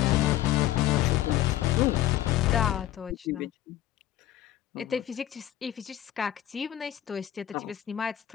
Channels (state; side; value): quieter; right; 13.0 dB